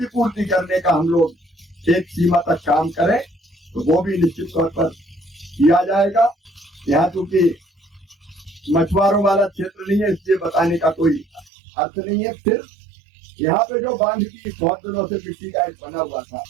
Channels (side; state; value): left; drops out; at 11.5 s